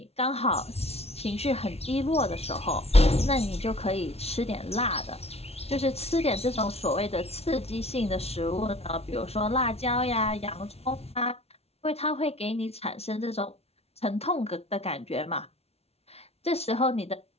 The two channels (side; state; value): right; late; 0.30 ms